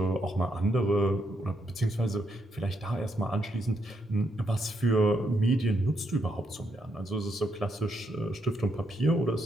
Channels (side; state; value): both; normal; correlation 0.78